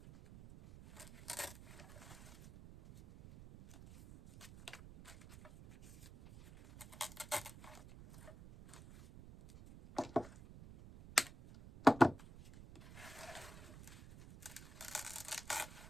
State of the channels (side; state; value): right; noise; rumble, 16 dB below the sound